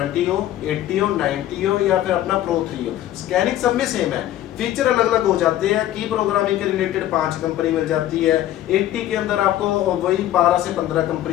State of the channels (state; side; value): quieter; right; 13.1 dB